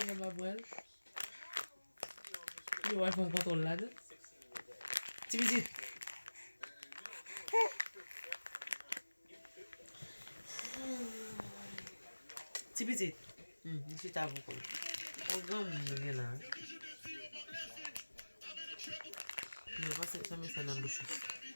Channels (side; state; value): both; inverted; correlation -1.00